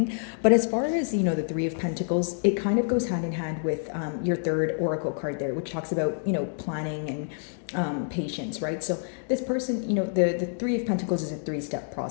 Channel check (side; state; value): right; silent; digital silence